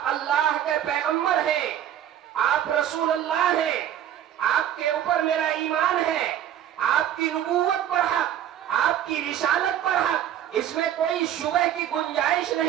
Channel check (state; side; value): quieter; left; 10.8 dB